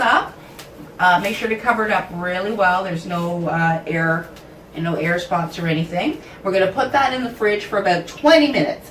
Make sure to cover it up really well. There's no air and no air spots or anything. We're going to put that in the fridge for about 20 minutes.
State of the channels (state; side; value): identical; both; correlation 1.00